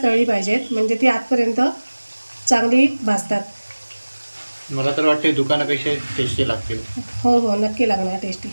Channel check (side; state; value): both; inverted; correlation -1.00